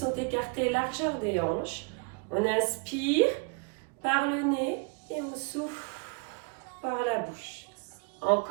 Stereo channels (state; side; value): quieter; left; 34.2 dB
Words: écartés largeur des hanches. On inspire par le nez et on souffle par la bouche.